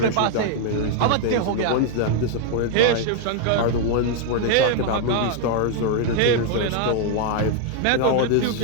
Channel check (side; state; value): both; different; correlation 0.00